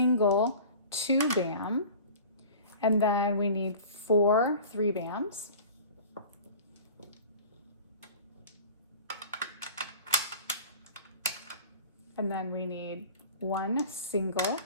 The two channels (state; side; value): inverted; both; correlation -0.40